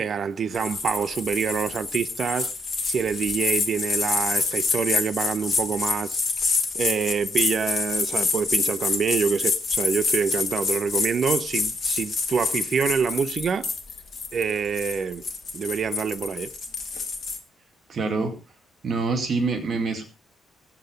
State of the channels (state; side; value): normal; both; correlation 0.73